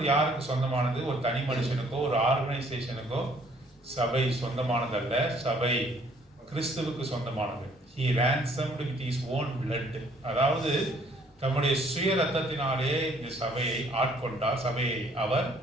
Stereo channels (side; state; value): both; normal; correlation 0.61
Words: யாருக்கு சொந்தமானது? ஒரு தனி மனுஷனுக்கோ ஒரு ஆர்கனைசேஷனுக்கோ சபை சொந்தமானதல்ல. சபை கிறிஸ்துவுக்கு சொந்தமானது. He ransomed with his own blood. அதாவது தம்முடைய சுய ரத்தத்தினாலே இந்த சபையை ஆட்கொண்டார். சபையை அவர்